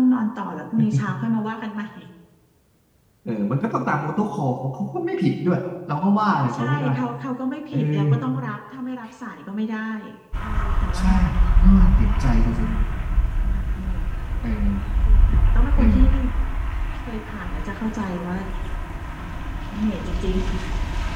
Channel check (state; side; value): identical; both; correlation 1.00